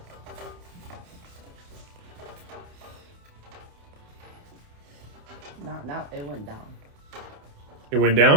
Now it went down. It went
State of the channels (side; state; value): left; late; 28 ms